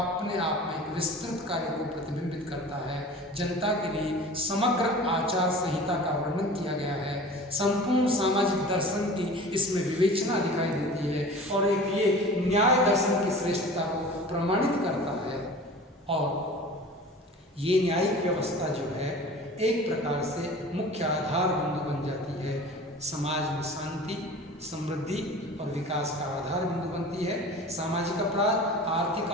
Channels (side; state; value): both; normal; correlation 0.40